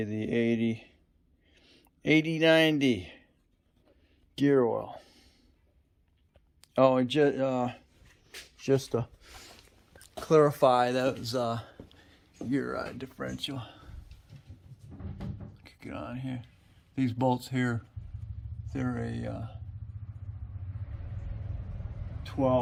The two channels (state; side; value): identical; both; correlation 1.00